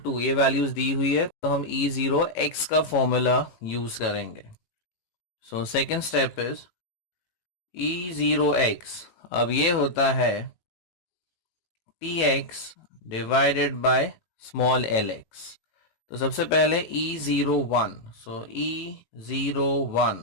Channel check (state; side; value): late; right; 18 ms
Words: ये वैल्यूज दी हुई है, तो हम E0x का फॉर्मूला यूज करेंगे। So second step is E0x। अब ये होता है tx divided by small lx। तो सबसे पहले E01, so